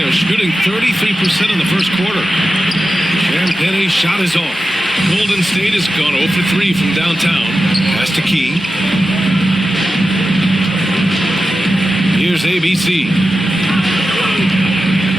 shooting 33% in the first quarter. Champagne's shot is off. Golden State has gone 0 for 3 from downtown. Pass to Key. Here's ABC.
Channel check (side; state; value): both; normal; correlation 0.92